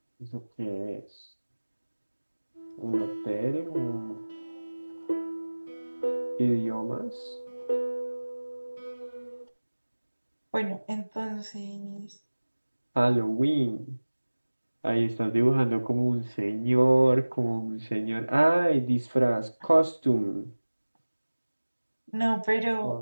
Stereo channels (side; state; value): both; inverted; correlation -1.00